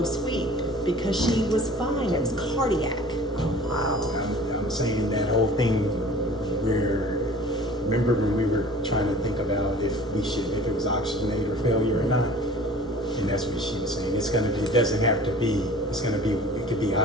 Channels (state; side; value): normal; both; correlation 0.45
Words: sweep because she was fine. It was cardiac. I'm saying that whole thing where, remember when we were trying to think about if it was oxygenate or failure or not? And that's what she was saying. It doesn't have to be, it could be